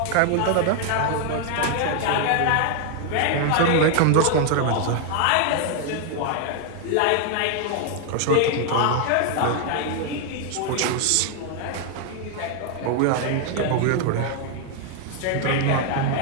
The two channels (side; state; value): both; different; correlation 0.00